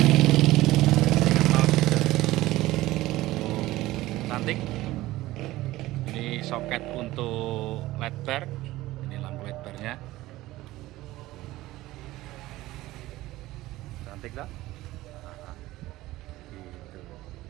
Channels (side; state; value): left; quieter; 17.3 dB